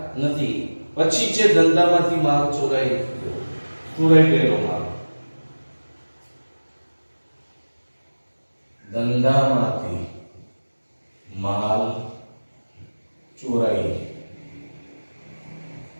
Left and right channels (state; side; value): inverted; both; correlation -1.00